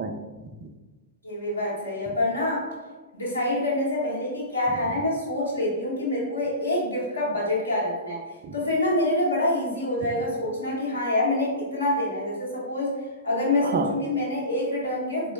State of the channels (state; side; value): inverted; both; correlation -0.32